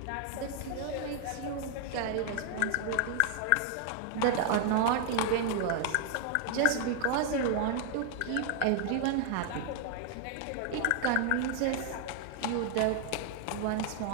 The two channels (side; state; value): both; different; correlation 0.00